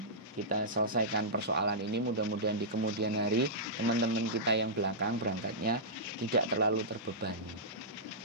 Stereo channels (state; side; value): normal; both; correlation -0.14